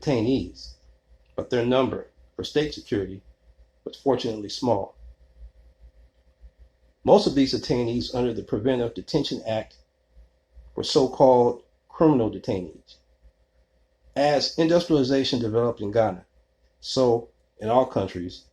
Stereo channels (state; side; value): identical; both; correlation 1.00